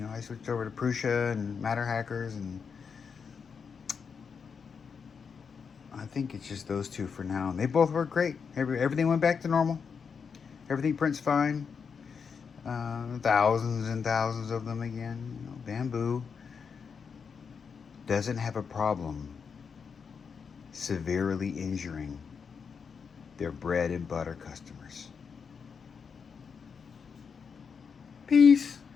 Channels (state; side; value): quieter; right; 6.1 dB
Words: I switched over to Prusa and Matter Hackers, and I think it's just those two for now. And they both work great. Everything went back to normal. Everything prints fine. Thousands and thousands of them again. Bambu doesn't have a problem severely injuring their bread and butter customers. Peace.